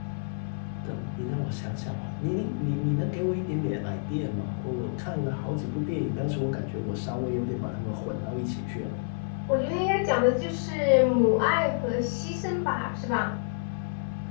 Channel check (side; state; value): right; silent; digital silence